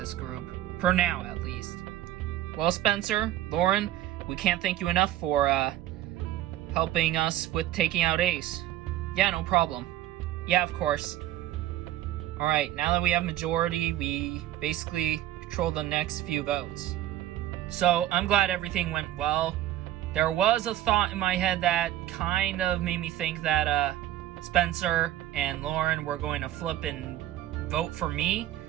group. For now, at least. Well, Spencer, Lauren, we can't thank you enough for helping us with taking out Ace. Yeah, no problem. Yeah, of course. Alright, now that we have majority, we basically control the next few votes. So, I'm glad everything went well. There was a thought in my head that kind of made me think that Spencer and Lauren were going to flip and vote for me.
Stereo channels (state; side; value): quieter; left; 13.3 dB